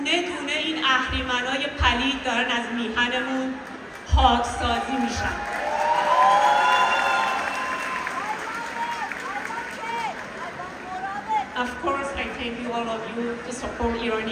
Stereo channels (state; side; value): identical; both; correlation 1.00